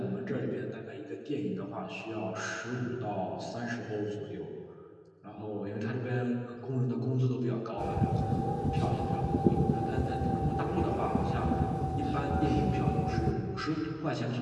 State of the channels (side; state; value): both; identical; correlation 1.00